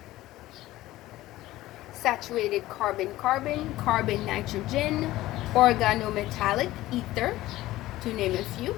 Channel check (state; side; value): quieter; right; 16.4 dB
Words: Saturated carbon-carbon, carbon-nitrogen, organometallic ether, to name a few.